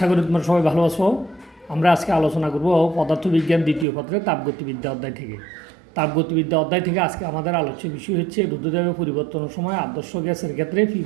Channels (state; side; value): drops out; left; at 3.9 s